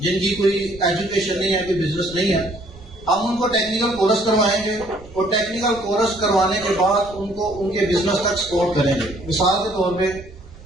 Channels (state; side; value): noise; right; rumble, 20 dB below the sound